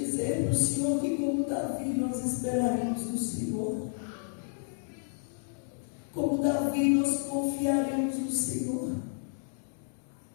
para o Senhor que, como Davi, nós esperaremos no Senhor. Como Davi, nós confiaremos no Senhor.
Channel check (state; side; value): silent; right; 57 dB below the other